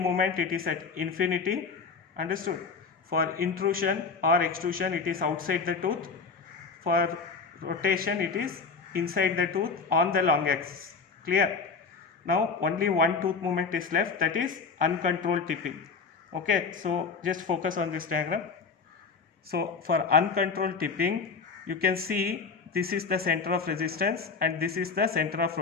it is at infinity. Understood? For intrusion or extrusion, it is outside the tooth. For rotation, it is inside the tooth on the long axis. Clear? Now, only one tooth movement is left, that is uncontrolled tipping. Okay, so just focus on this diagram. So for uncontrolled tipping, you can see this is the center of resistance and this is the center of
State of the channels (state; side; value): quieter; right; 5.1 dB